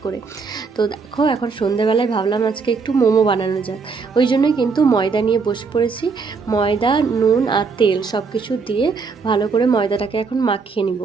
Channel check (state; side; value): quieter; left; 4.9 dB